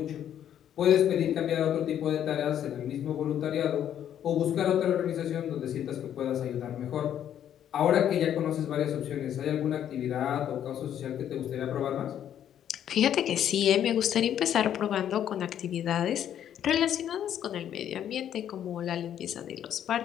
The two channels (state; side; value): quieter; right; 10.1 dB